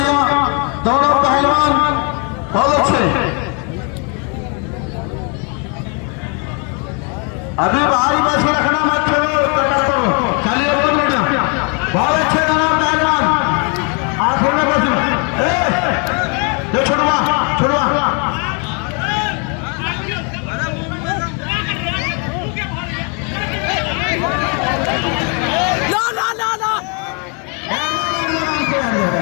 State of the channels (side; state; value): right; quieter; 36.0 dB